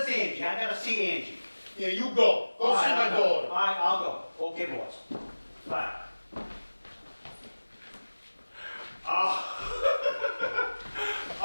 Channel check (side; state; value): both; inverted; correlation -1.00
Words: Angie? I got to see Angie. Yeah, you go. Go see my daughter. All right, I'll go. Okay, boss. Bye.